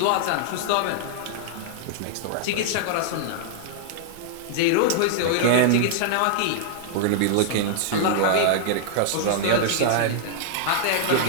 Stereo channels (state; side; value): different; both; correlation -0.01